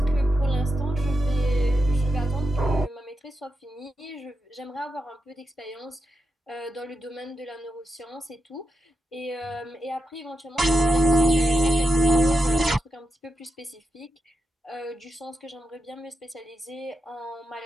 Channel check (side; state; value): both; normal; correlation 0.87